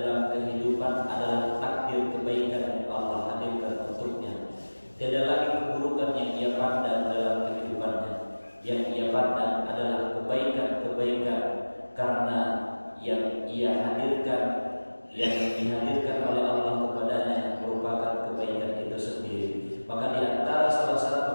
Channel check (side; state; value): both; inverted; correlation -1.00